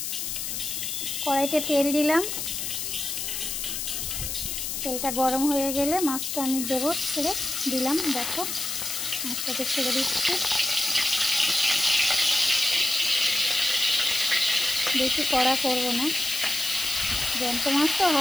কড়াইতে তেল দিলাম। তেলটা গরম হয়ে গেলে মাছটা আমি দেবো, ছেড়ে দিলাম। দেখো, মাছটাকে ছেড়ে দিচ্ছি। বেশি কড়া করব না, জ্যান্ত মাছ তো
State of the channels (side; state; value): left; noise; hiss, 3 dB below the sound